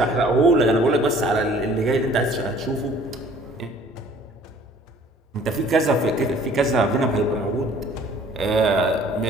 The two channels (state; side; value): normal; both; correlation 0.54